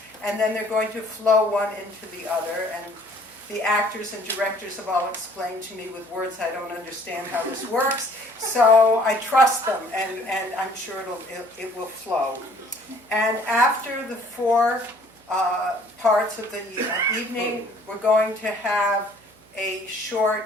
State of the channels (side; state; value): right; noise; hum, 30 dB below the sound